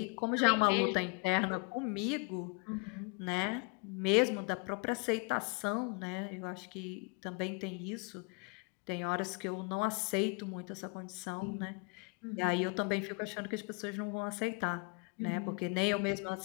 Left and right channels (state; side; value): quieter; right; 31.3 dB